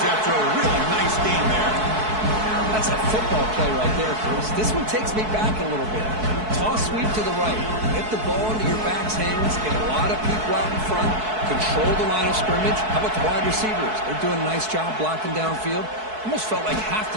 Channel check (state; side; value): late; left; 4.6 ms